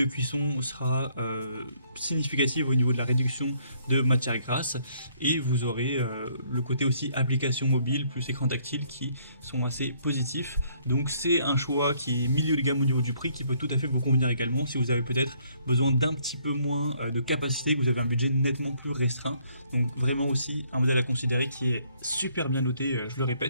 cuisson sera significative au niveau de la réduction de matière grasse et vous aurez le côté aussi application mobile plus écran tactile qui sont assez positifs. Donc c'est un choix qui est milieu de gamme au niveau du prix qui peut tout à fait vous convenir également si vous avez peut-être besoin d'un petit peu moins de capacité, que vous avez un budget nettement plus restreint. Donc vraiment aussi un modèle à considérer qui est super bien noté, je le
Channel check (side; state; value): both; inverted; correlation -0.66